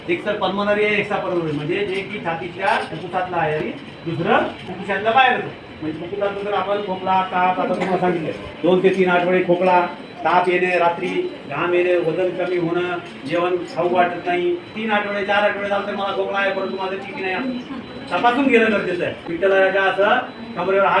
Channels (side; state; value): both; identical; correlation 1.00